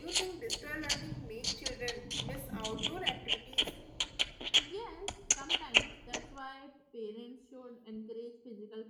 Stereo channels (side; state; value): both; identical; correlation 1.00